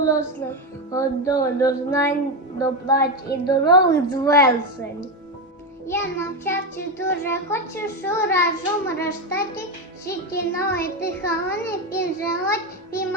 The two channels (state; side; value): normal; both; correlation 0.11